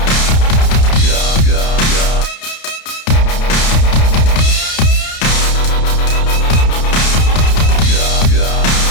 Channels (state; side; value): late; right; 31 ms